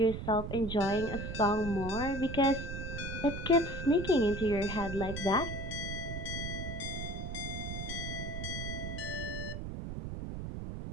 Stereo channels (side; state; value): right; noise; rumble, 6 dB below the sound